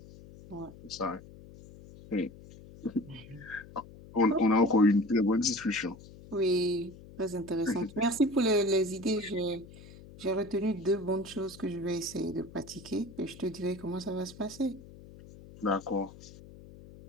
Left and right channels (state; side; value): noise; left; hum, 19 dB below the sound